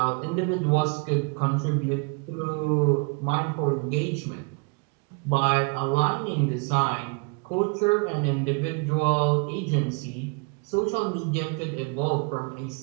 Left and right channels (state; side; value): quieter; left; 33.3 dB